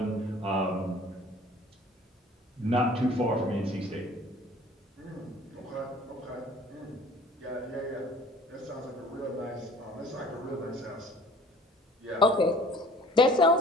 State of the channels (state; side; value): normal; both; correlation 0.49